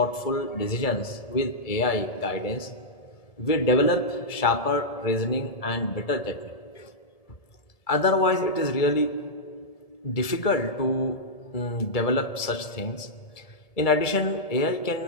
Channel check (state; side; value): late; right; 1.7 ms